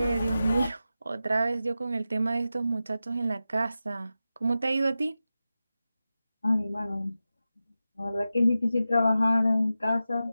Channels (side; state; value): both; inverted; correlation -0.93